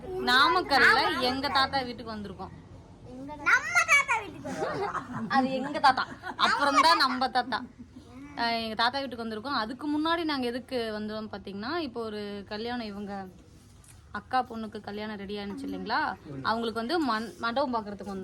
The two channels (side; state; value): both; identical; correlation 1.00